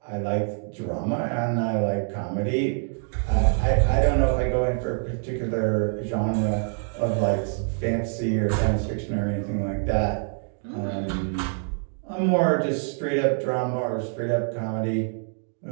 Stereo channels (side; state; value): left; silent; 55 dB below the other